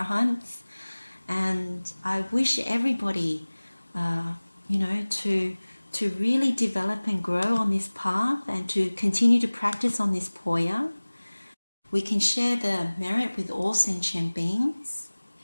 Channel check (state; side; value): inverted; both; correlation -1.00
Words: And I wish everybody, to really develop and grow on this path and to continue to practice on this Poya. We can share the merit with all sentient beings.